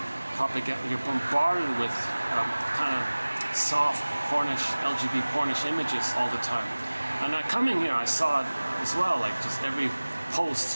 propaganda? You're bombarded with kind of soft, pornish, LGBT pornish images all the time. And coming here, I saw it as well. Like just every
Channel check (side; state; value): both; inverted; correlation -1.00